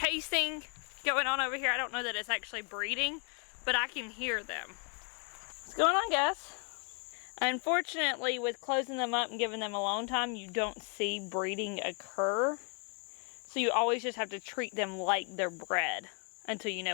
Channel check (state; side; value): quieter; right; 38.5 dB